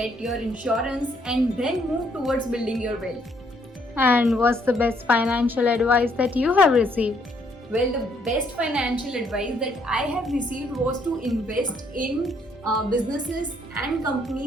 your insurance, and then move towards building your wealth. And what's the best financial advice that you have received? Well, the best financial advice that I have received was to invest in businesses and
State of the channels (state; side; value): normal; both; correlation 0.68